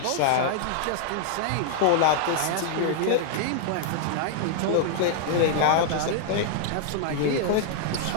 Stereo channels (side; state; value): both; different; correlation -0.01